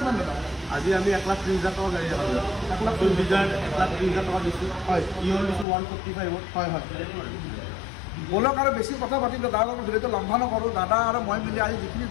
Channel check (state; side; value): drops out; right; at 5.7 s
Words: দাদা আজি আমি 1,30,000 টকা গাড়ী দেখালোঁ 1,30,000 টকা দিছোঁ হয় ইয়ন দিছোঁ 145 হয় হয় বলক আৰু বেছি কথা পাতিম দাদা লগত ভিডিঅ'টো লম্বা নকৰোঁ দাদা আৰু মই মিলি আজি যিখিনি